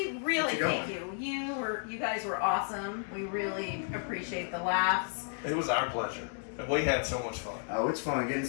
really thank you. You guys were awesome. We really appreciate the laughs. It was our pleasure. And we had so much fun. Oh, it's fun getting to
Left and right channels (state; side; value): silent; right; 56 dB below the other